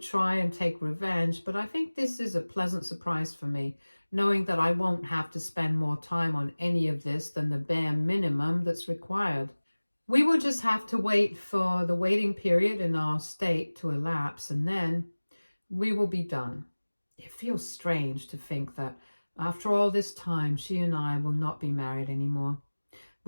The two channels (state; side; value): inverted; both; correlation -1.00